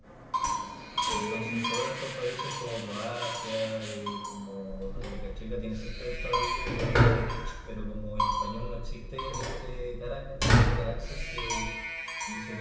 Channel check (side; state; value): both; identical; correlation 1.00